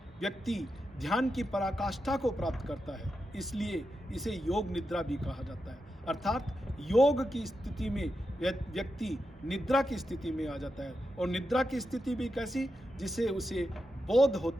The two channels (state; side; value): normal; both; correlation 0.88